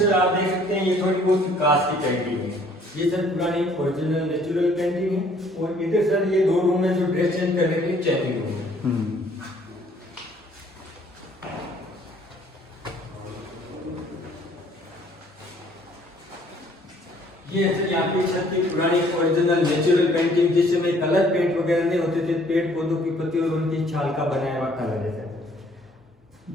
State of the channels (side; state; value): both; normal; correlation 0.60